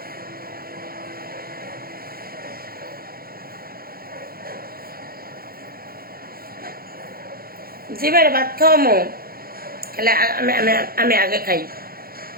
জি ভাই, ভাত খাওয়ামো। খালি আমি আমি আমি আগে খাই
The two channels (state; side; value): late; left; 0.43 ms